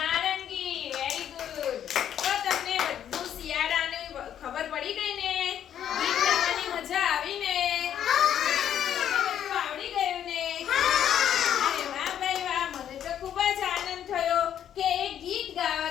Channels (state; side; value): quieter; right; 9.9 dB